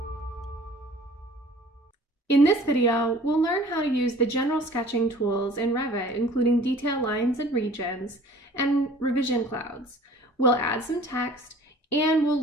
In this video, we'll learn how to use the general sketching tools in Revit, including detail lines and regions and revision clouds. We'll add some text and we'll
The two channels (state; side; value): normal; both; correlation 0.49